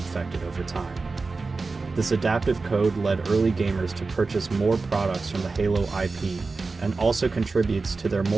over time. This adaptive code led early gamers to purchase more products from the Halo IP, and also contributes to their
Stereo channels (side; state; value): left; quieter; 4.0 dB